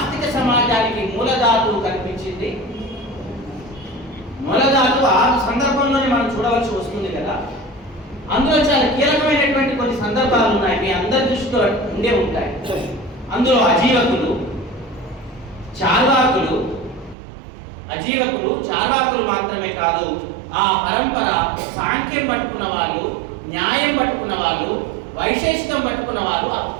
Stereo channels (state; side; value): drops out; left; at 17.2 s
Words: సమాజానికి మూలధాతువు కనిపించింది. మూలధాతువు ఆ సందర్భంలోనే మనం చూడవలసి వస్తుంది కదా. అందులో చాలా కీలకమైనటువంటి కొన్ని సందర్భాలు ఉన్నాయి, మీ అందరి దృష్టిలో ఉండే ఉంటాయి. అందులో అజీవకులు, చార్వాకులు మాత్రమే కాదు, ఆ పరంపర సాంఖ్యం పట్టుకున్న వాళ్ళు, న్యాయం పట్టుకున్న వాళ్ళు, వైశేషికం పట్టుకున్న వాళ్ళు